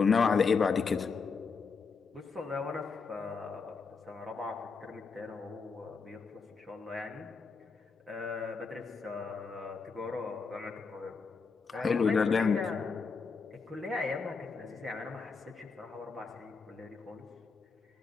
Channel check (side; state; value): right; quieter; 5.0 dB